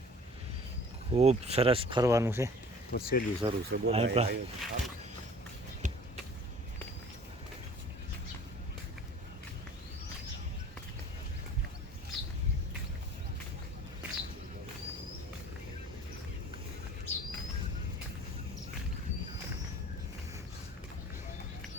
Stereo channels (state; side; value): normal; both; correlation 0.48